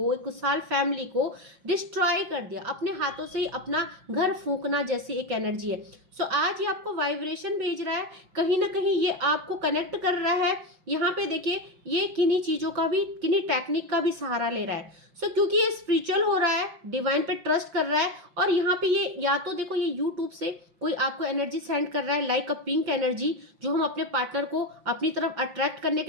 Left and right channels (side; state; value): left; late; 5.6 ms